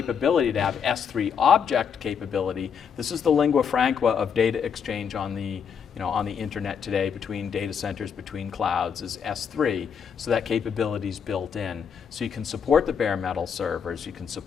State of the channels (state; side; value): quieter; right; 7.0 dB